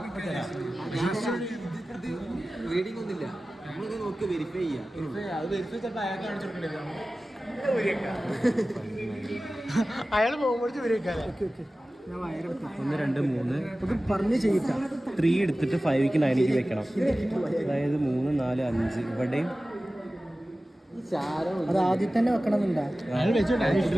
റീഡിംഗ് ഒന്നുമില്ല. നമ്മളിത് നോക്കി വെരിഫൈ ചെയ്യാം. അയാൾ പോകുമ്പോഴേക്കും വരും. 1 2 3 പറഞ്ഞ് ചെയ്യിക്കാം. 3 എടുത്തിട്ട് 5ക്ക് 9ക്ക് വെക്കണം. അതായത് 3 4 5 ഇവിടെയും അത് ആദ്യം തന്നെ വെക്കണം എന്നുണ്ടാ.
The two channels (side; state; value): both; normal; correlation 0.96